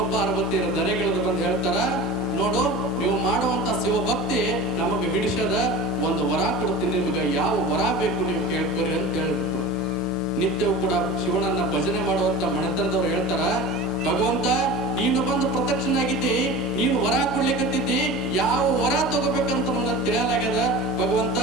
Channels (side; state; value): both; normal; correlation 0.33